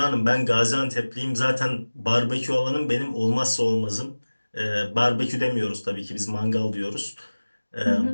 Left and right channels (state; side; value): inverted; both; correlation -1.00